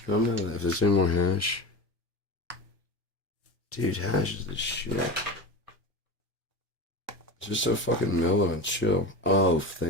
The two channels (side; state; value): both; normal; correlation 0.26